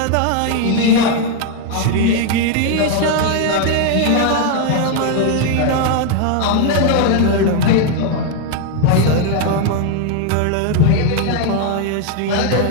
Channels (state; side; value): different; both; correlation 0.01